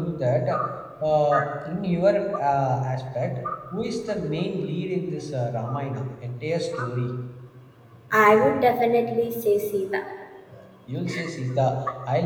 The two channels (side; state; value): both; identical; correlation 1.00